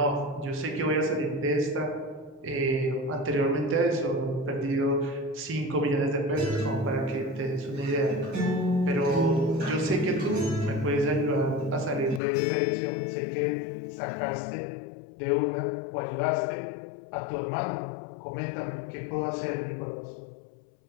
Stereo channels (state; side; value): drops out; right; at 12.2 s